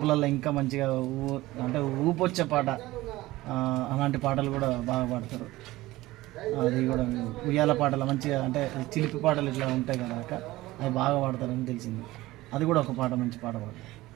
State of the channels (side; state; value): left; quieter; 18.2 dB